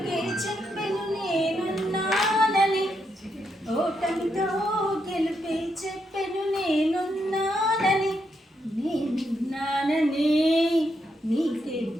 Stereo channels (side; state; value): both; normal; correlation 0.80